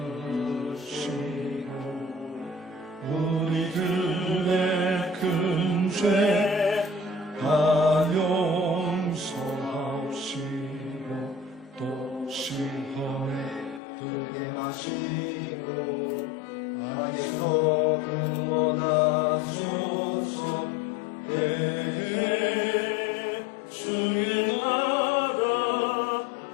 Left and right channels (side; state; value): right; drops out; at 13.8 s